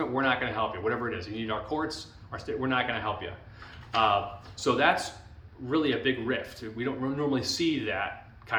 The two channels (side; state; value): both; identical; correlation 1.00